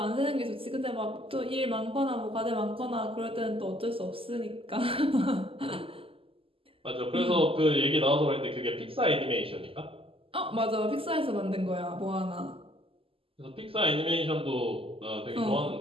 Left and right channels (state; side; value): late; left; 0.26 ms